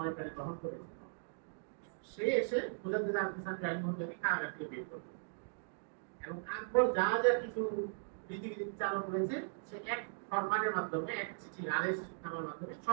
প্রাণে গ্রহণ করেছে, সে এসে মুজাদ্দিদ আল-ফিসানি রাহিমাহুল্লাহকে কারাগার থেকে বের করল এবং আকবর যা যা কিছু রীতিনীতি চালু করেছে সে এক ফরমানের মাধ্যমে, এক চিঠি আদেশ নামার মাধ্যমে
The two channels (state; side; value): silent; left; digital silence